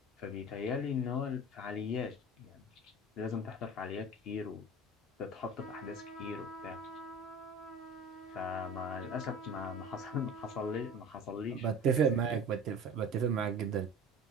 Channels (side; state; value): both; normal; correlation 0.37